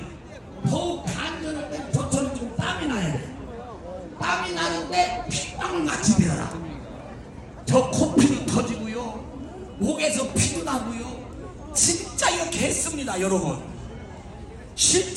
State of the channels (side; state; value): both; identical; correlation 1.00